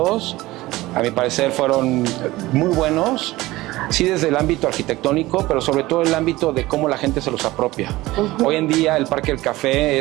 a mi parecer, fueron muy buenos, sí desde el ámbito arquitectónico, pero sobre todo el ámbito de cómo la gente se los apropia. Hoy en día el Parque del Café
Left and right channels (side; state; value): left; quieter; 18.6 dB